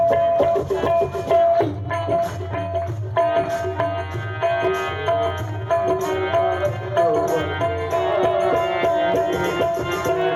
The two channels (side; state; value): both; identical; correlation 1.00